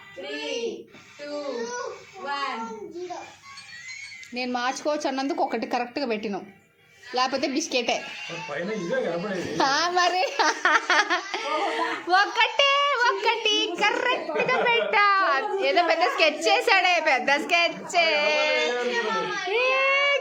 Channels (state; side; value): identical; both; correlation 1.00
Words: 3, 2, 1. నేను మార్చుకోవచ్చు అన్నందుకు ఒకటి కరెక్ట్గా పెట్టినాం, లేకపోతే బిస్కెటే. పైన ఇదే కనపడేది. మరి ఒకటి కరెక్ట్గా పెట్టా. ఏదో పెద్ద స్కెచ్ చేశాడే, పెద్ద స్కెచ్.